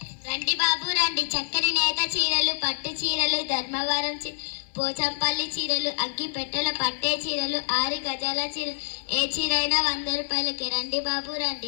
రండి బాబు రండి. చక్కని నేత చీరలు, పట్టు చీరలు, ధర్మవరం పోచంపల్లి చీరలు, అగ్గి పెట్టెల పట్టే చీరలు, 6 గజాల చీరలు, ఏ చీర అయినా 100 రూపాయలకి. రండి బాబు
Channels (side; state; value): right; silent; digital silence